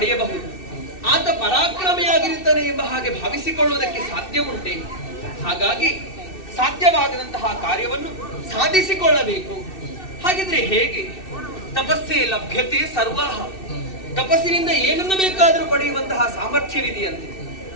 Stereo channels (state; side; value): late; right; 2.6 ms